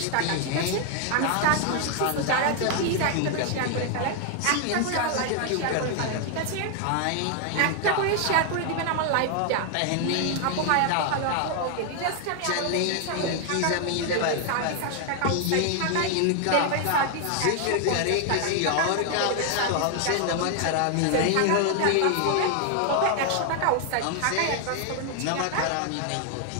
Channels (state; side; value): different; both; correlation 0.00